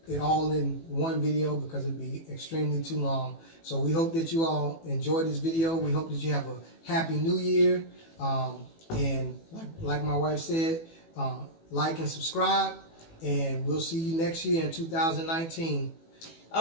it all in one video because it'd be extremely too long. So we hope that you all enjoy this video. We hope that you have a happy new year. And like my wife said, like and subscribe, and we'll see you next year in 2019.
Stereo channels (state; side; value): late; right; 18 ms